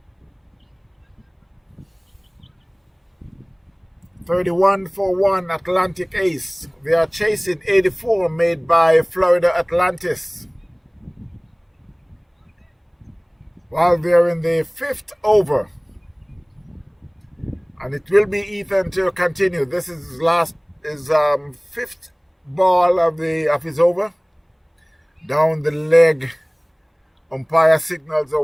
31 for 1, Atlantic Ace. They are chasing 84 made by Florida Atlantis. While they're in the 5th over. And it will be Ethan to continue. This is his 5th ball of his over. Down the leg. Umpire signals are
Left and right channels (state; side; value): identical; both; correlation 1.00